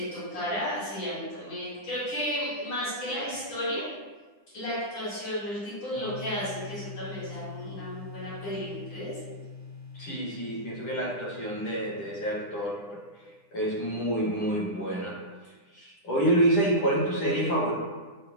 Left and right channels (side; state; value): right; late; 9.9 ms